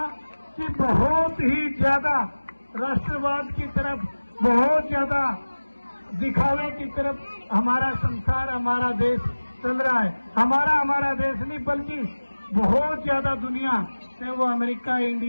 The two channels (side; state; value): both; inverted; correlation -1.00